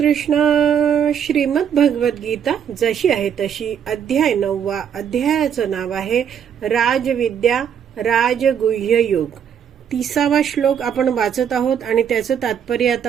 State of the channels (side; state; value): left; quieter; 8.3 dB